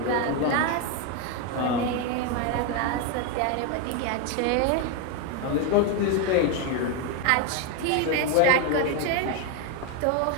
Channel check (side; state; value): both; different; correlation 0.02